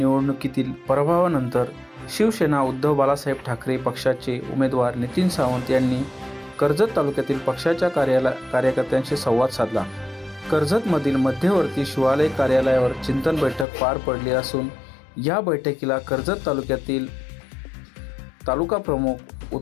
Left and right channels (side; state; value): right; drops out; at 13.7 s